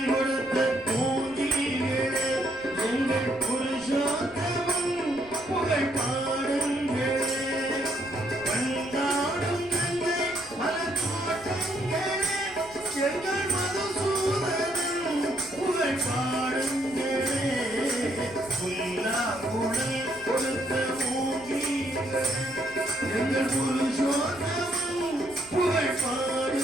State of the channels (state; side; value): noise; right; rumble, 23 dB below the sound